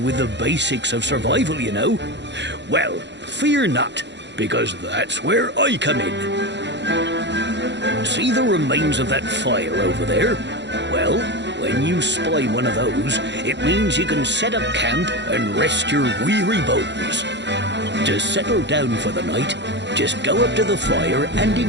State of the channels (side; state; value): left; late; 0.52 ms